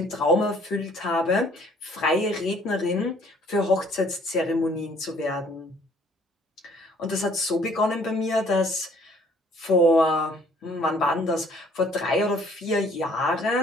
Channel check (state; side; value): normal; both; correlation 0.59